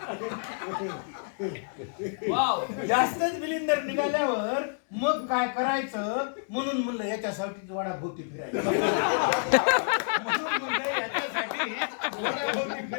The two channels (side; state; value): right; silent; digital silence